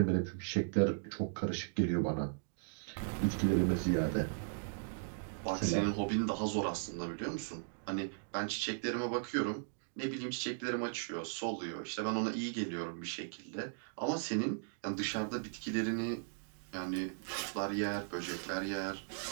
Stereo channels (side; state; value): left; silent; digital silence